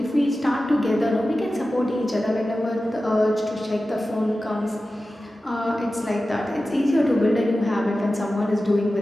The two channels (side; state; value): both; normal; correlation 0.94